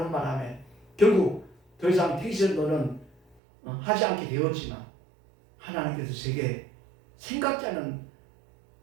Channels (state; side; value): drops out; left; at 3.4 s